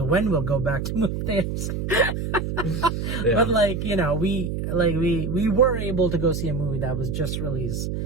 we'll go back to movie theaters. Yeah. But we were able to go see a movie that was just released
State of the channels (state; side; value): noise; right; hum, 3 dB below the sound